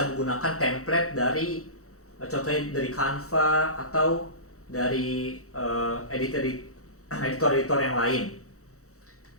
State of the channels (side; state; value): right; late; 0.65 ms